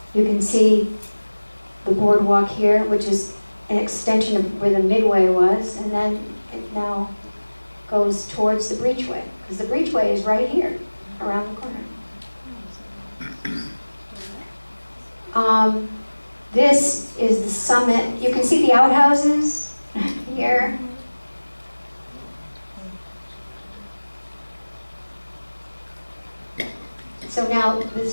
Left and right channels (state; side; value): inverted; both; correlation -1.00